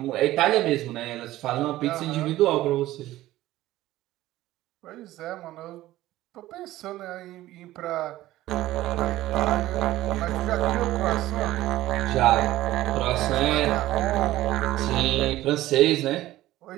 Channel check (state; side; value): quieter; left; 15.7 dB